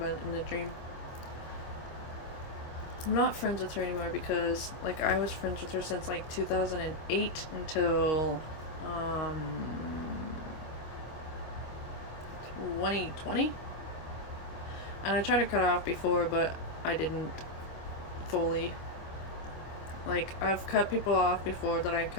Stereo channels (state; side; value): late; right; 25 ms